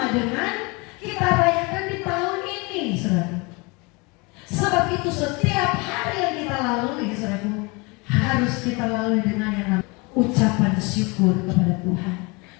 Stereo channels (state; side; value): quieter; right; 27.7 dB